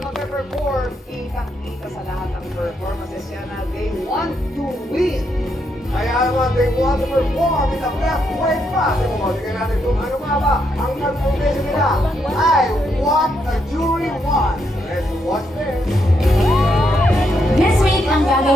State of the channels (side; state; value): both; normal; correlation 0.78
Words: mag-perform, kitang-kita sa lahat ng performances yan na they want to win. Kaya naman, they want to perform in the best way possible. Tingnan natin kung ano nga ba ang nag-foundation nila. I want a jury one. Let's watch this. This week, ang